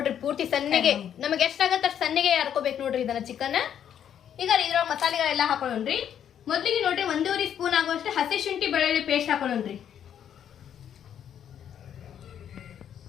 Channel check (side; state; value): right; quieter; 9.3 dB